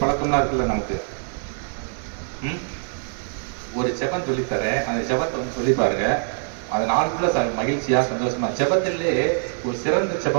பழக்கம்லாம் இருக்குல்ல நமக்கு. ஒரு செபம் சொல்லித்தரேன், அந்த செபத்தை வந்து சொல்லி பாருங்க, அந்த நாளுக்குள்ள மகிழ்ச்சியா சந்தோஷமா. செபத்திலே ஒரு சிறந்த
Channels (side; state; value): left; silent; 60 dB below the other